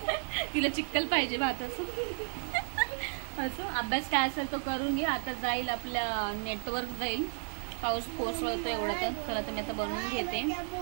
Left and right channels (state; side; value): silent; left; digital silence